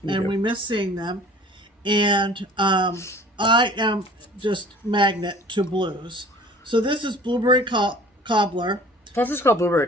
and we miss seeing them. And I am just magnet to blues. So this is Blueberry Cobbler. Plus it's called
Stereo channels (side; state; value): both; normal; correlation 0.47